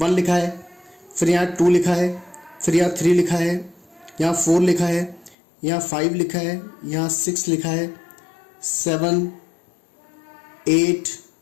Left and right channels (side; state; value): right; drops out; at 5.4 s